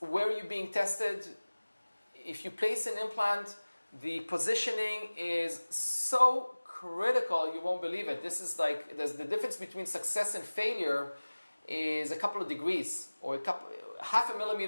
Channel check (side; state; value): both; inverted; correlation -1.00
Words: where you're being tested. If you place an implant, the positioning is so critical, you won't believe it. This is like, the difference between success and failure is a couple of degrees, or half a